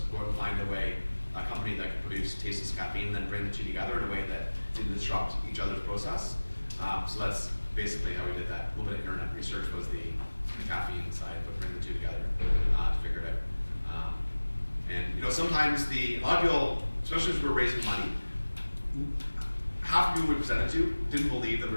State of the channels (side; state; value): both; inverted; correlation -1.00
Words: go and find a company that could produce tasteless caffeine, and then bring the 2 together in a way that didn't disrupt each other's process. So that's basically how we did that. A little bit of internet research was the caffeine side, but bring the 2 together to figure it out. And sometimes a lot of people, especially as we were raising money, half of people we presented to didn't believe that we